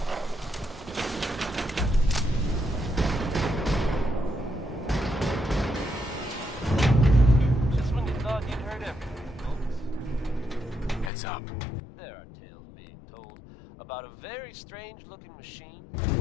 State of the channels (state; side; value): drops out; right; at 11.1 s